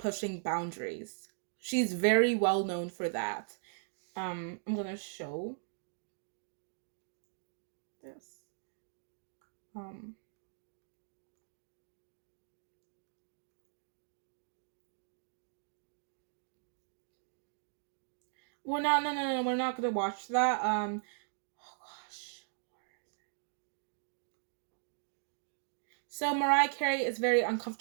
boundaries. She's very well known for that. I'm gonna show this. Um, we're not. No, no, no. We're not gonna watch that. Oh gosh. So Mariah Carey is very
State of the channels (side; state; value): left; silent; digital silence